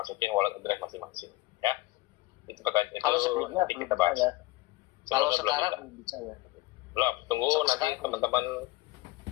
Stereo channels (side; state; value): right; quieter; 20.0 dB